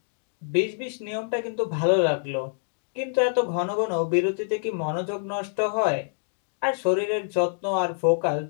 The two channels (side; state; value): right; silent; digital silence